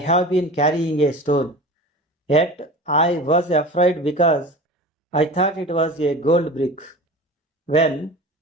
been carrying a stone. Yet I was afraid because I thought it was a gold brick." When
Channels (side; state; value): both; normal; correlation 0.35